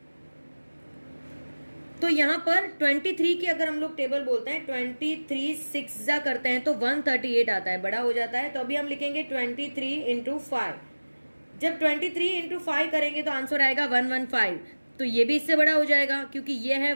तो यहां पर 23 की अगर हम लोग टेबल बोलते हैं 23 6 जा करते हैं तो 138 आता है, बड़ा हो जाता है. तो अभी हम लिखेंगे 23 इंटू 5. जब 23 इंटू 5 करेंगे तो आंसर आएगा 115. तो ये भी इससे बड़ा हो जाएगा क्योंकि ये है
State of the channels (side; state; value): both; inverted; correlation -1.00